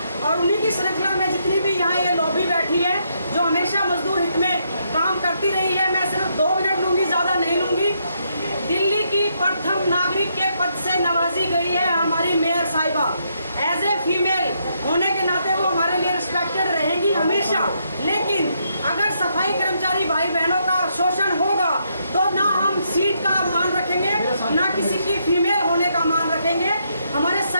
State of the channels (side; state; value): both; inverted; correlation -0.76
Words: और उन्हीं की श्रृंखला में जितनी भी यहाँ ये लॉबी बैठी है जो हमेशा मजदूर हित में काम करती रही है। मैं सिर्फ 2 मिनट लूँगी, ज़्यादा नहीं लूँगी। दिल्ली की प्रथम नागरिक के पद से नवाजी गई है हमारी मेयर साहिबा। एज ए फीमेल होने के नाते वो हमारे लिए रिस्पेक्टेड रहेंगी हमेशा, लेकिन अगर सफाई कर्मचारी भाई बहनों का शोषण होगा तो ना हम सीट का मान रखेंगे, ना किसी की फीमेल होने का मान रखेंगे। हमारे